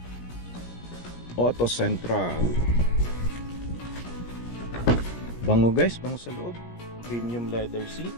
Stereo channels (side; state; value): right; late; 17 ms